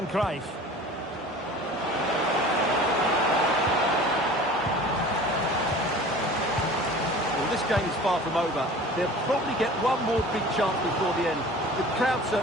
Cruyff. Well, this game is far from over. They'll probably get one more big chance before the end. The crowd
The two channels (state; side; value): normal; both; correlation 0.42